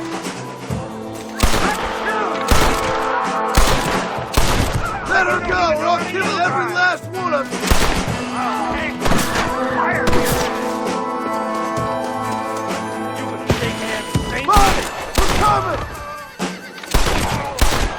Let her go, or I'll kill every last one of you! Fire! Bonnie! We're coming!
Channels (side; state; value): both; identical; correlation 1.00